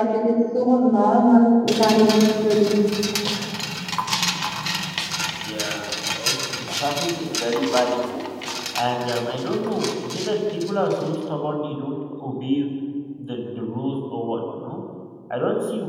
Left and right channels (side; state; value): both; identical; correlation 1.00